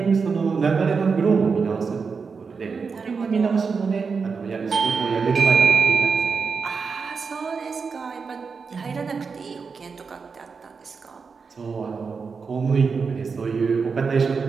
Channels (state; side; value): quieter; left; 5.2 dB